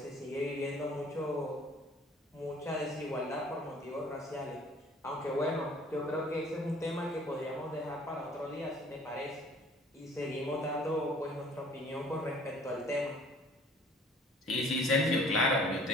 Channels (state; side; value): normal; both; correlation 0.53